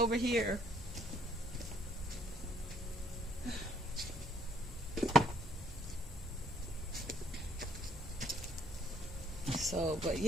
here. So, but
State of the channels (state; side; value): normal; both; correlation 0.64